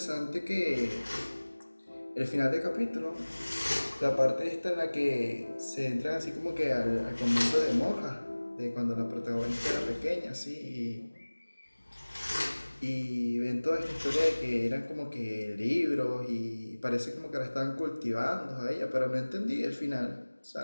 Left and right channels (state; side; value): inverted; both; correlation -1.00